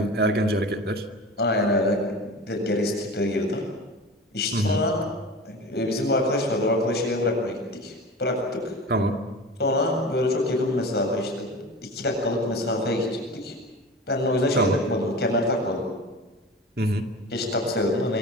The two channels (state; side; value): normal; both; correlation 0.34